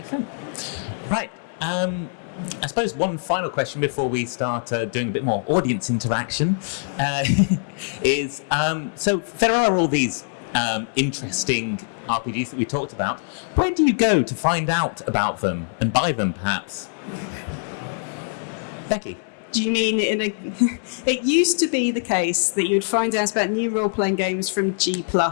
Right. I suppose one final question before we start doing a bit more audience interaction is, so there are all these interesting RPGs that we talked about. Where do you go to find out about them and buy them, perhaps? Becky? Do you mean it used to be the case that you'd find out about new role-playing games from G+.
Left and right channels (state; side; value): silent; right; 62 dB below the other